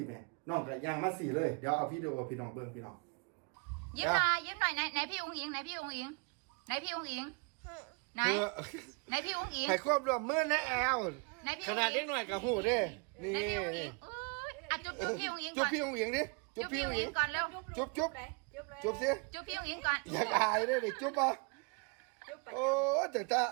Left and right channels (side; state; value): left; quieter; 33.9 dB